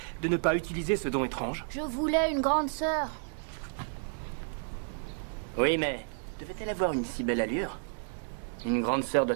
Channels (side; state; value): left; silent; 57 dB below the other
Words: de ne pas utiliser ce don étrange? Je voulais une grande sœur. Oui, mais devait-elle avoir une si belle allure? Une grande sœur doit